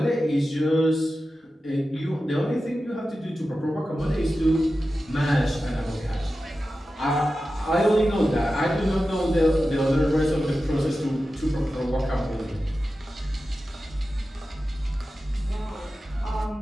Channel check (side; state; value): both; normal; correlation 0.93